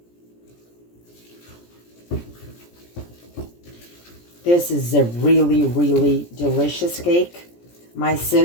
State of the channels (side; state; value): right; late; 17 ms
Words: This is a really, really delicious cake. My